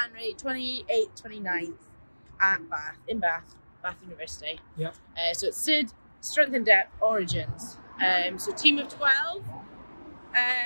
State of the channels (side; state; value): both; inverted; correlation -1.00